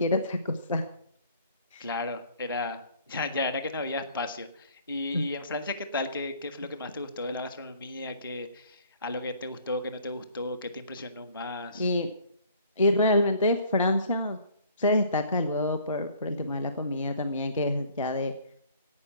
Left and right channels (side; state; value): both; inverted; correlation -0.55